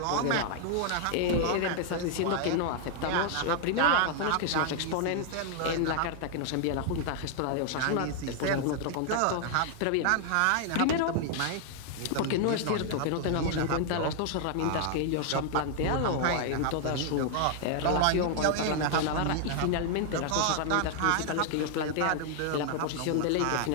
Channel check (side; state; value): both; different; correlation 0.00